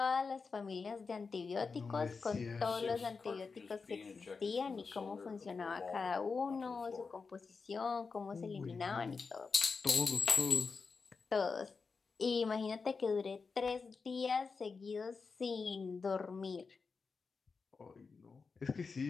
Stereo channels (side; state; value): right; quieter; 4.8 dB